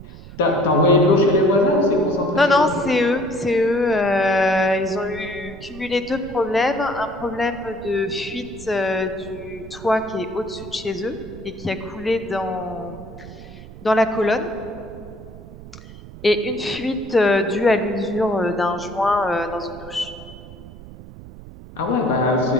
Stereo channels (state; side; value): noise; right; rumble, 16 dB below the sound